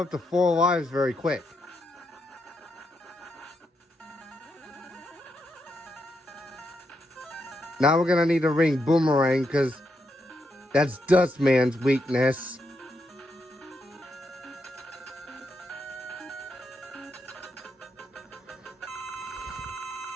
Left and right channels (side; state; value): both; normal; correlation 0.81